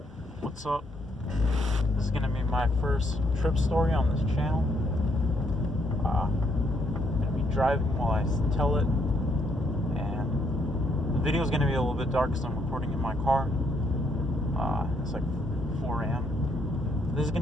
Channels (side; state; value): both; normal; correlation 0.72